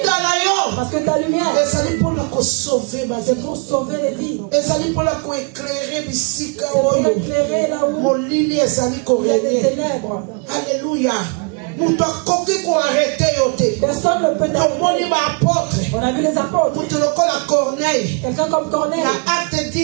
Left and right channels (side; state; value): left; quieter; 35.2 dB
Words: que ta lumière c'est pour sauver les vies. C'est pour éclairer là où il y a des ténèbres. Alléluia. Personne ne peut t'apporter. On a vu les apôtres. Quelqu'un comme Corneille. Acte